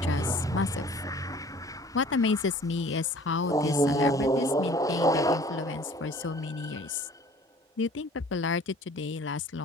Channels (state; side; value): normal; both; correlation 0.49